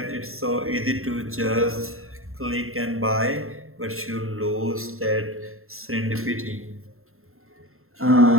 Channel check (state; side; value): late; left; 0.62 ms